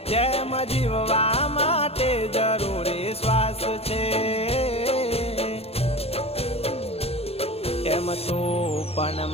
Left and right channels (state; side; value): late; right; 0.29 ms